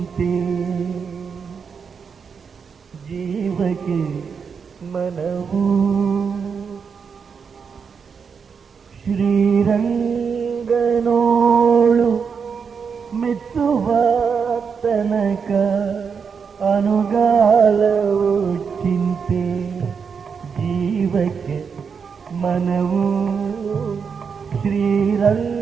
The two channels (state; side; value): quieter; left; 6.1 dB